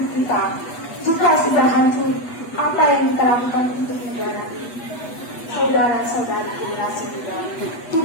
kita. Jika sudah hancur, apa yang kita lakukan untuk negara? Saudara-saudara generasi muda,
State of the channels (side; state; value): right; late; 8.2 ms